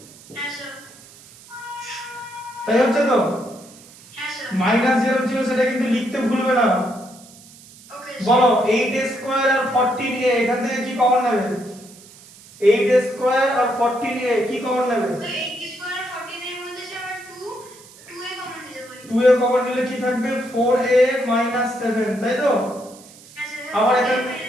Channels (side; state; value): right; noise; hiss, 22 dB below the sound